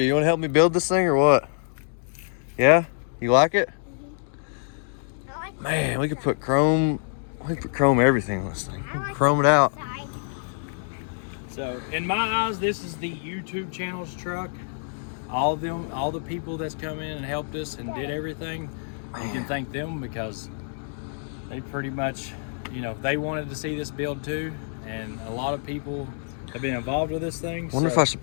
you want to help me build this thing or what? Yeah, you like it? I like Man, we could put chrome. We could put chrome everything on this thing. I like Chrome it out. side. So, in my eyes, this is the YouTube channel's truck. All of them, all the people that's come in and helped us and did everything, you can thank them because they pretty much, you know, they wanted to see this build too, and a lot of people have been involved with this thing. Wonder if I should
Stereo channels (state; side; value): silent; right; digital silence